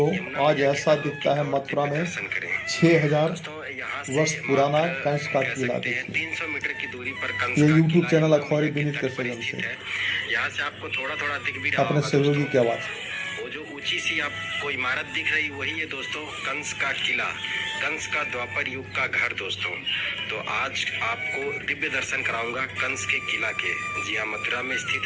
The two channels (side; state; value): both; identical; correlation 1.00